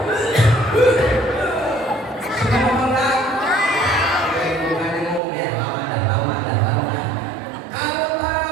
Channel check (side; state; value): left; drops out; at 5.2 s